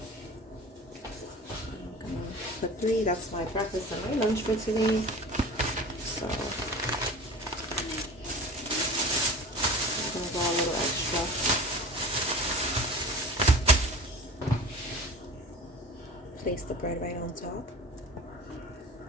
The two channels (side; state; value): both; normal; correlation 0.37